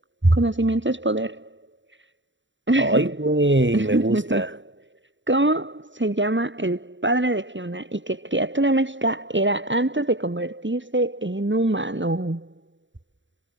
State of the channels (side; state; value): left; late; 0.54 ms